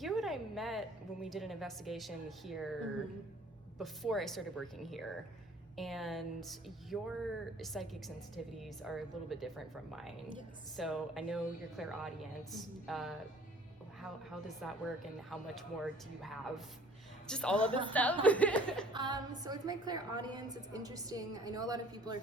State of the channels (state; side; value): normal; both; correlation 0.53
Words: and I met when we did an investigation here before I started working here, and your psychic sensitivities are a little bit different from mine. Yes. So I know you're clairaudience. How does that work, and how much more do you have? Just all of this stuff. So with my clairaudience, it's interesting. I know a lot of people are